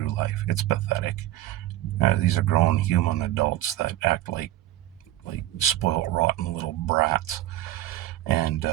life. It's pathetic. These are grown human adults that act like spoiled, rotten little brats. And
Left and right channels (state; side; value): quieter; left; 14.6 dB